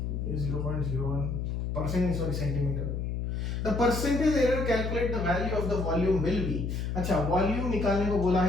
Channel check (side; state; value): left; noise; hum, 2 dB below the sound